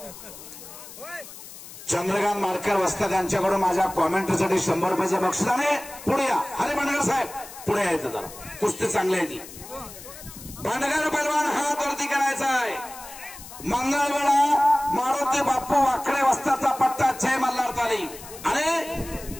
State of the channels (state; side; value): noise; left; hiss, 15 dB below the sound